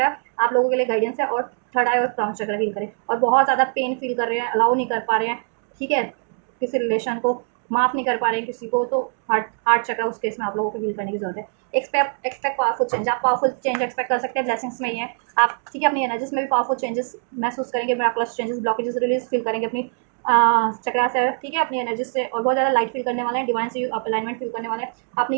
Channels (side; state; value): left; silent; 56 dB below the other